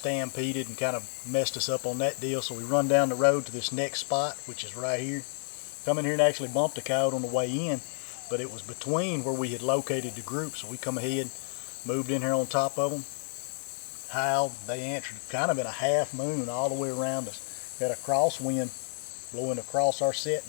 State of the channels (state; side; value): silent; right; digital silence